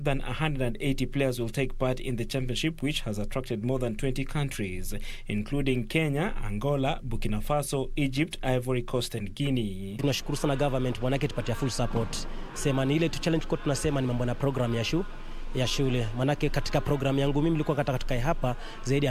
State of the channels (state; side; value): identical; both; correlation 1.00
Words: than 180 players will take part in the championship, which has attracted more than 20 countries, including Kenya, Angola, Burkina Faso, Egypt, Ivory Coast and Guinea. Tunashukuru sana government, wanake tupatia full support. Sema ni ile challenge kwa tunasema ni mambo na program ya shule. Manake katika program yangu mimi nilikuwa katika hapa zaidi